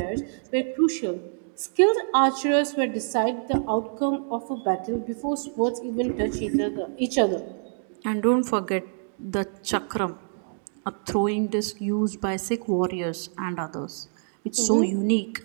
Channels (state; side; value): silent; left; digital silence